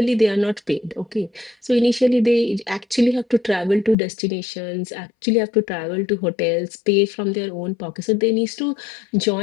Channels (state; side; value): drops out; right; at 4.0 s